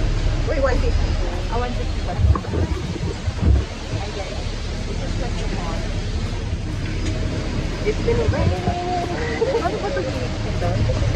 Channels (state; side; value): identical; both; correlation 1.00